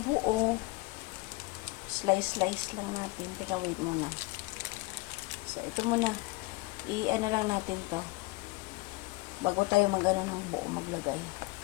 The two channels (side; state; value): right; quieter; 23.0 dB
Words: Slice lang natin. Teka, wait muna. So, ito muna. I-ano lang natin to. Bago tayo mag-ano ng buo maglagay.